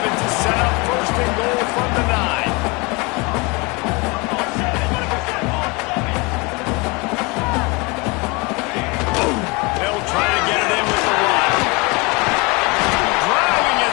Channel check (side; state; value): right; quieter; 27.4 dB